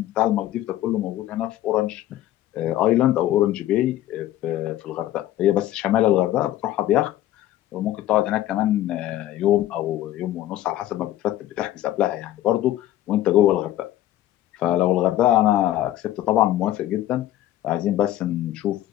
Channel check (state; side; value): quieter; right; 13.7 dB